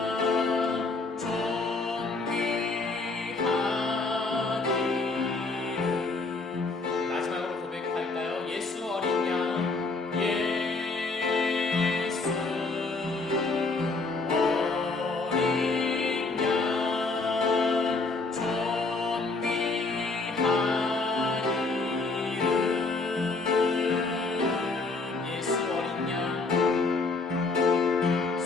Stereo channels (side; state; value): right; quieter; 3.7 dB